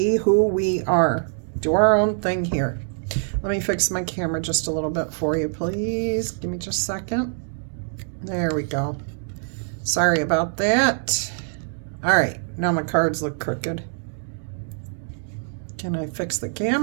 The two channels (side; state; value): left; silent; 63 dB below the other